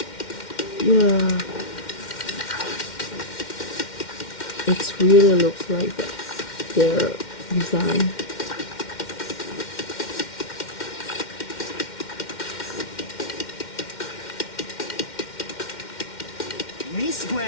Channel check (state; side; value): late; right; 2.1 ms